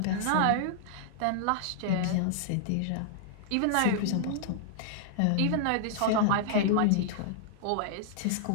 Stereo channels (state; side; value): different; both; correlation -0.01